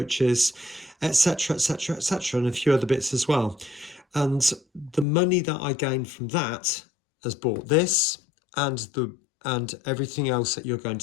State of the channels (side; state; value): right; drops out; at 5.1 s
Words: etc., etc., etc., and a few other bits as well. And the money that I gained from that has bought this and everything else that you're going to